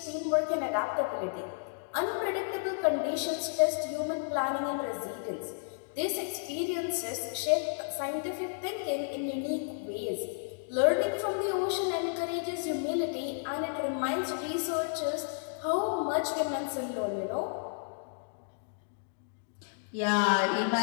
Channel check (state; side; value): silent; right; digital silence